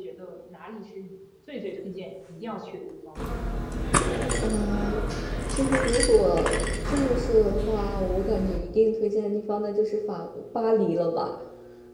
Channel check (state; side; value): identical; both; correlation 1.00